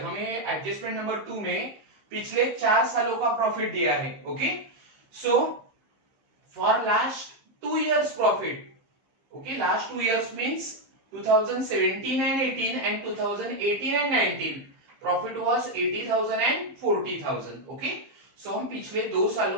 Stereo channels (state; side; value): late; left; 15 ms